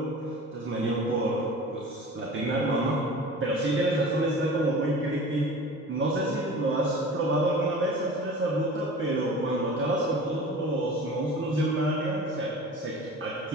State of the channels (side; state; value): both; normal; correlation 0.39